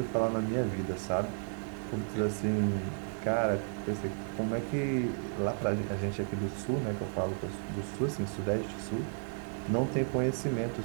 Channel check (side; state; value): left; silent; digital silence